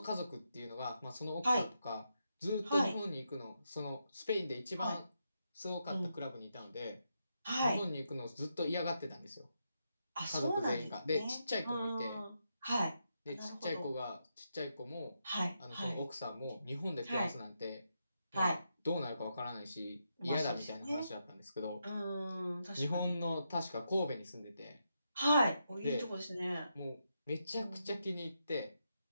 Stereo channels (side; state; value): both; inverted; correlation -0.83